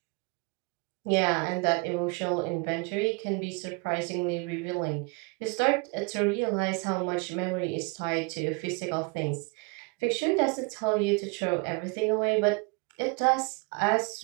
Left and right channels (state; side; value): quieter; left; 30.9 dB